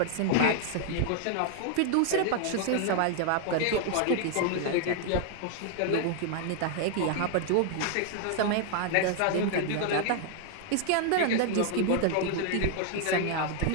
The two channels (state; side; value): different; both; correlation 0.00